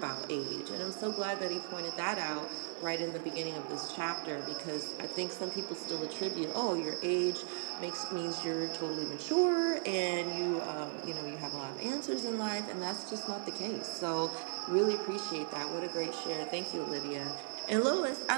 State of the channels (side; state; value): left; silent; 53 dB below the other